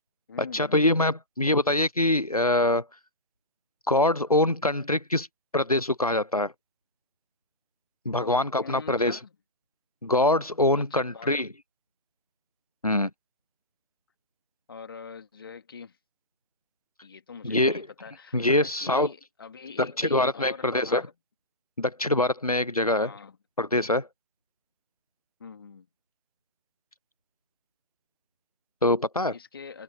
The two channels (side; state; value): both; normal; correlation -0.13